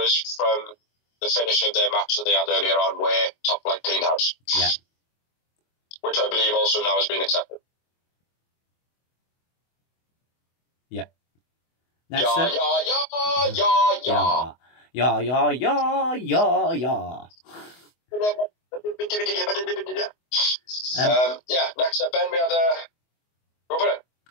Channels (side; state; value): right; late; 24 ms